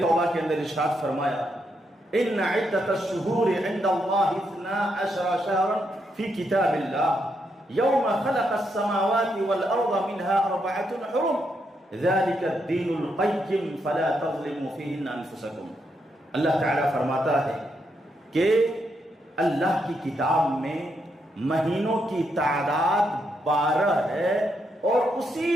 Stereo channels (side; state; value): both; normal; correlation 0.79